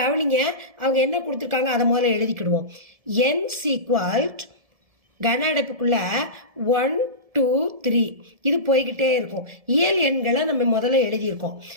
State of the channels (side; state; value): left; late; 1.7 ms